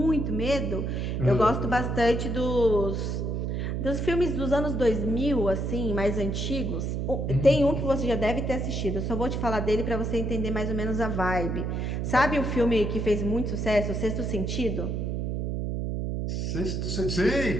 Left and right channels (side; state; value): right; noise; hum, 1 dB below the sound